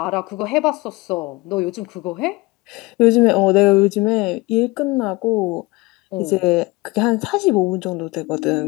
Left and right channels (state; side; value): quieter; right; 22.3 dB